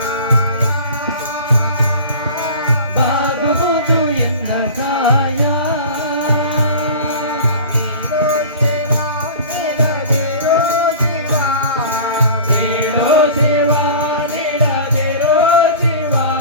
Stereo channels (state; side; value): inverted; both; correlation -0.38